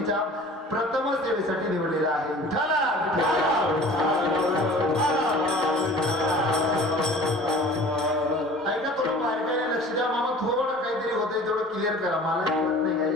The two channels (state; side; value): normal; both; correlation 0.45